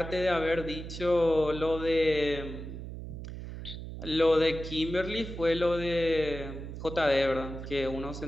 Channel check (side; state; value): right; noise; hum, 9 dB below the sound